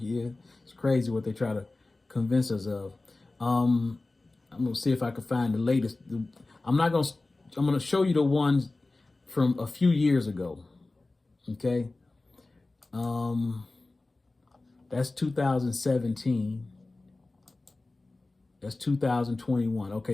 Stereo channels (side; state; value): right; quieter; 3.2 dB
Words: year. It's crazy what they try to convince us of. I'm going to see if I can find the latest. I'm going to show you the ones from a few years ago. Okay. That's 2017. That's 2021.